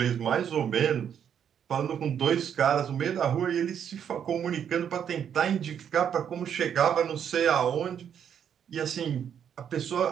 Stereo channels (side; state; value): left; quieter; 8.5 dB